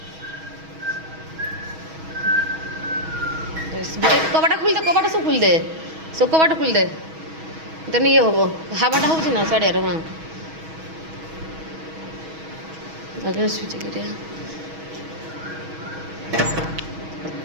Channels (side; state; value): left; late; 6.3 ms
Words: कबाटा खुल दे कबाटा सब खुल दे सब कबाटा खुल दे तेन ये हम हावाटा हो साड़िया हाँ आगे स्विच गिरिया